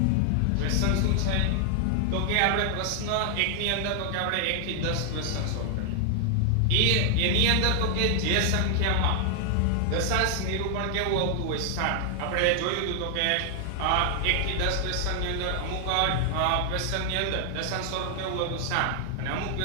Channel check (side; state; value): both; different; correlation 0.00